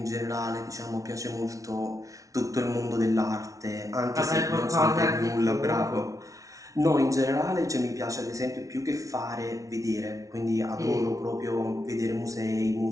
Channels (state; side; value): late; left; 0.17 ms